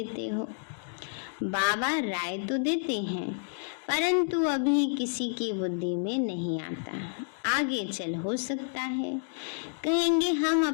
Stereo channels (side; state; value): right; silent; digital silence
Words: हो। बाबा राय तो देते हैं परंतु अभी किसी की बुद्धि में नहीं आता, आगे चल हो सकता है। कहेंगे हम